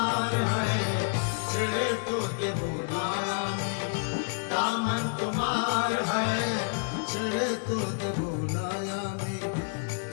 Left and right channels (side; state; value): right; silent; digital silence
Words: হয়, ছেড়ে তো দেব না আমি, দামন তোমার হয়, ছেড়ে তো দেব না আমি,